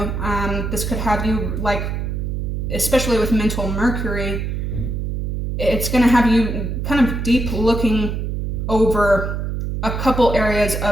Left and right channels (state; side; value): noise; right; hum, 2 dB below the sound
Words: This could have you, like, especially with mental Mercury, it's going to have you kind of deep looking over a couple areas